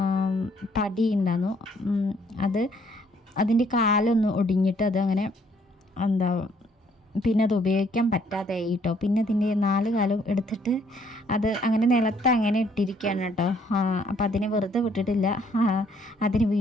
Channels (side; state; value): both; normal; correlation 0.66